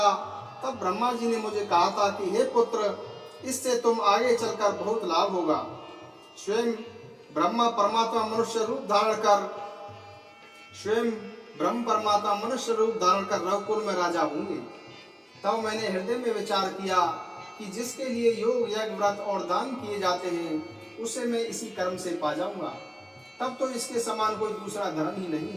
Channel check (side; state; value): both; identical; correlation 1.00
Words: तब ब्रह्मा जी ने मुझे कहा था कि हे पुत्र, इससे तुम आगे चलकर बहुत लाभ होगा। स्वयं ब्रह्मा परमात्मा मनुष्य रूप धारण कर रघुकुल में राजा होंगे। तब मैंने हृदय में विचार किया कि जिसके लिए योग, यज्ञ, व्रत और दान किए जाते हैं, उसे मैं इसी कर्म से पा जाऊंगा। तब तो इसके समान कोई दूसरा धर्म ही नहीं